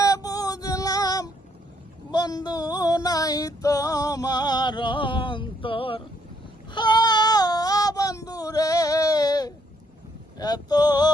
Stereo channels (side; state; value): both; normal; correlation 0.70